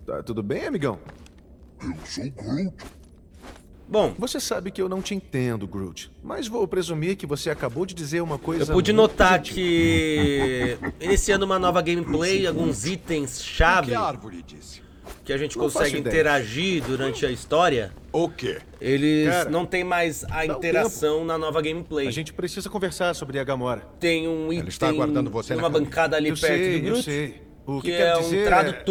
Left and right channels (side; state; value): both; identical; correlation 1.00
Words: Tá tudo bem, amigão? Bom, Você sabe que eu não te entendo, Groot. Mas vou presumir que você acabou de dizer uma coisa eu pude muito notar gentil. que iniciando uma nova gameplay, alguns itens chave Que a árvore disse? que a gente Não faço consegue ideia. interagir durante a história, O quê? eles Cara, não tem mais a um interação na nova gameplay. A gente precisa conversar sobre a Gamora. Tem um Ela está item aguardando você na numa cabine. bancada ali Eu perto sei, do eu Groot, sei. O que quero é um dizer